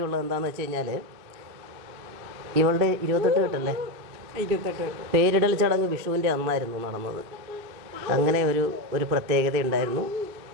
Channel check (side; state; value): left; late; 2.6 ms